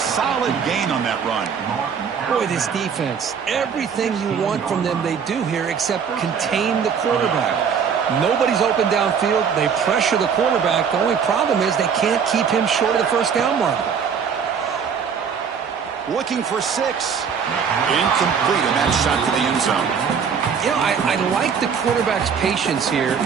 gain on that run. Boy, this defense, everything you want from them they do here except contain the quarterback. Nobody's open downfield. They pressure the quarterback. The only problem is they can't keep him short of the 1st down marker. Looking for 6. Incomplete, and that shot to the end zone. You know, I like the quarterback's patience here,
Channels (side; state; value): left; quieter; 6.8 dB